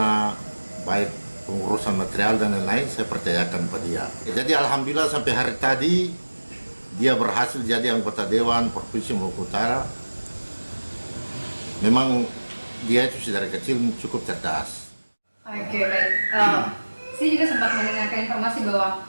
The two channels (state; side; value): inverted; both; correlation -1.00